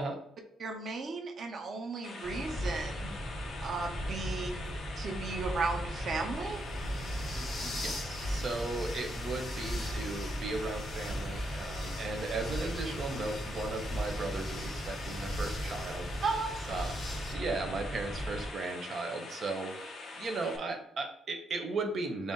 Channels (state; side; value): normal; both; correlation 0.79